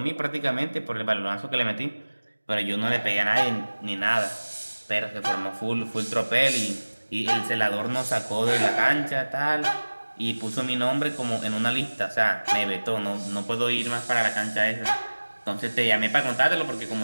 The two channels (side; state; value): both; inverted; correlation -1.00